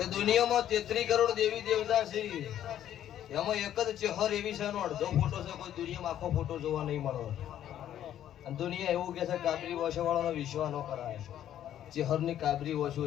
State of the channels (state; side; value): quieter; right; 11.2 dB